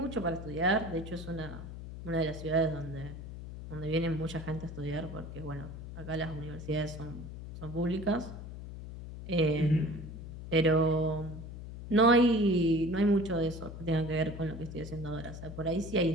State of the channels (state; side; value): noise; left; hum, 10 dB below the sound